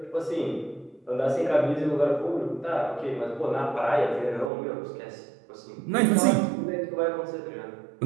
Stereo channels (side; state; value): left; drops out; at 4.5 s